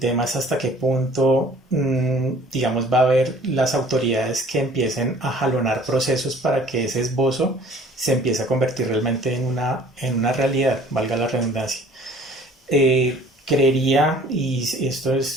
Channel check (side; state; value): both; normal; correlation 0.51